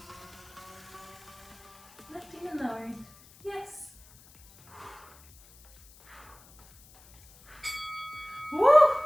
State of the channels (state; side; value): noise; left; hiss, 25 dB below the sound